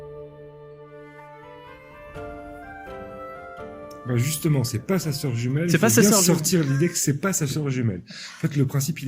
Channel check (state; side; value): identical; both; correlation 1.00